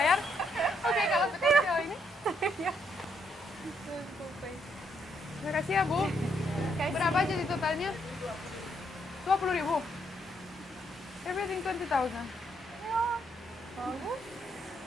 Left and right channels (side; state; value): both; normal; correlation 0.75